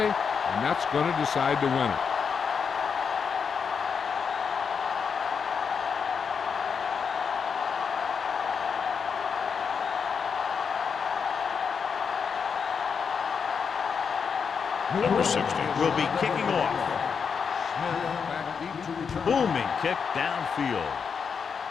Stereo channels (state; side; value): quieter; right; 6.2 dB